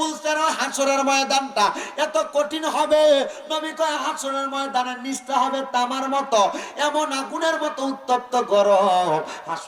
হাসরের ময়দানটা এত কঠিন হবে। নবী কয় হাসরের ময়দানের নিচটা হবে তামার মতো, এমন আগুনের মতো উত্তপ্ত গরম।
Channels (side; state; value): both; identical; correlation 1.00